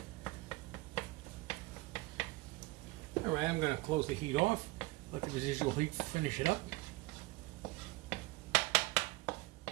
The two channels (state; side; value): quieter; left; 21.0 dB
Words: All right, I'm going to close the heat off, let the residual heat finish it up.